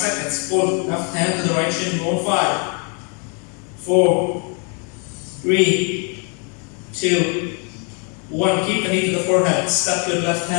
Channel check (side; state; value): right; quieter; 37.8 dB